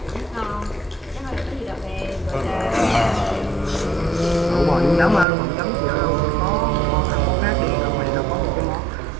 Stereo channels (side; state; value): left; drops out; at 5.2 s